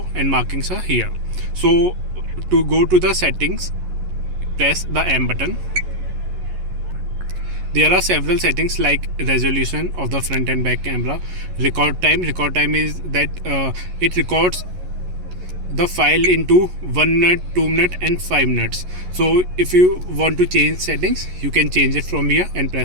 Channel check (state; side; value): late; left; 11 ms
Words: and markings are here. So to go to the settings, press the M button. There are several settings like resolution of the front and back camera, record time. Record time is that it records the file into 1 minute, 2 minutes and 5 minutes. So if you want to change settings, you can change it from here and